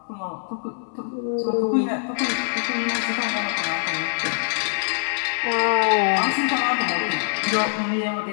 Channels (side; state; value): right; silent; 63 dB below the other